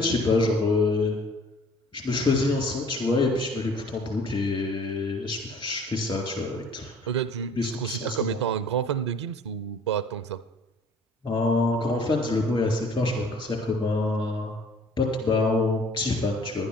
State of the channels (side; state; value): both; normal; correlation 0.53